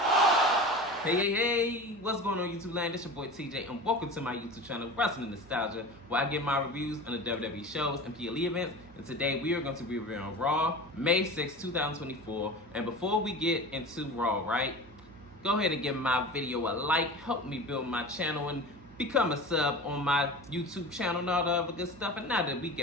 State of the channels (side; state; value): right; noise; hum, 23 dB below the sound